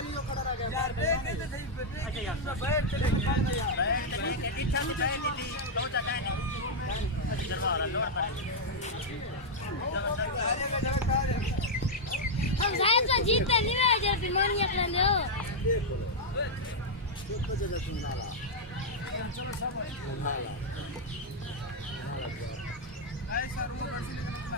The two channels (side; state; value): both; normal; correlation -0.03